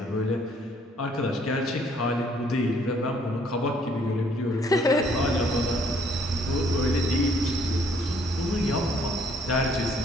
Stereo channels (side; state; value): both; normal; correlation 0.64